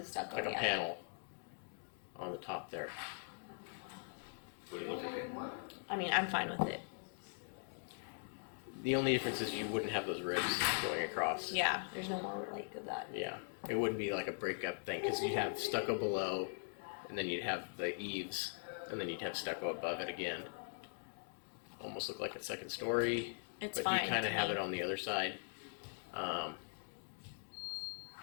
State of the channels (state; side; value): silent; right; digital silence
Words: stucco. like a yeah. panel on the top there. Would it look okay? I mean, I'm fine with it. The only difference is you wouldn't have those ribs going across. Yeah, there's no more like of that. Yeah, it wouldn't be like a breakup thing because you'd have stucco below, and then you'd have the eaves, and then you'd have stucco above it again. Almost look like a second story, It's but fine. you kind to of have me. it on the other side.